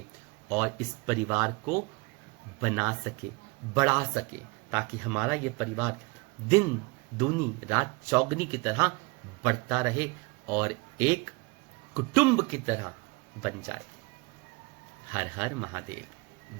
और इस परिवार को बना सके, बढ़ा सके, ताकि हमारा ये परिवार दिन दूनी रात चौगनी की तरह बढ़ता रहे और एक कुटुंब की तरह बन जाए। हर हर महादेव,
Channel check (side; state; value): left; quieter; 26.7 dB